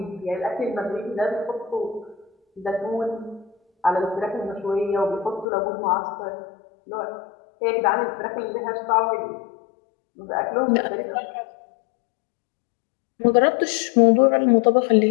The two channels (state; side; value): drops out; right; at 5.5 s